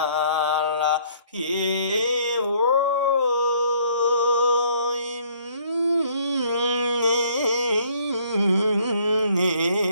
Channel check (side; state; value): both; inverted; correlation -0.62